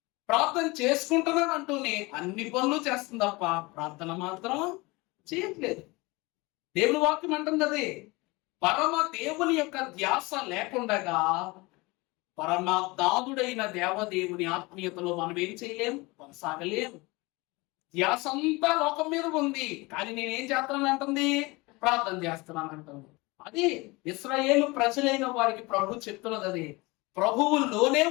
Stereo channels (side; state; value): right; quieter; 24.0 dB